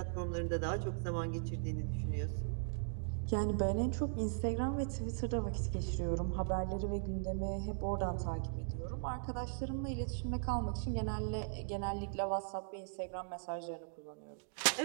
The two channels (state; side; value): silent; left; digital silence